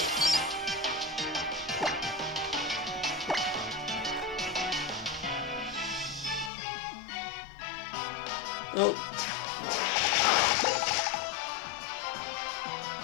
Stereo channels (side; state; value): right; drops out; at 6.5 s